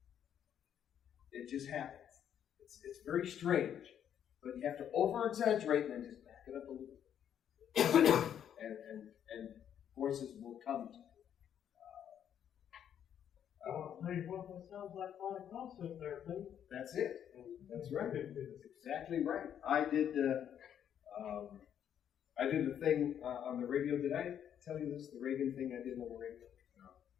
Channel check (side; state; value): right; quieter; 9.4 dB